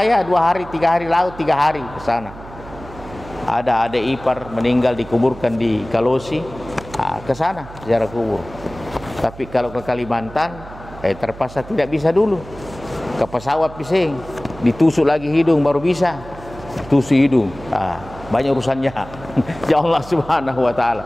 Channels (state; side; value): noise; right; hum, 16 dB below the sound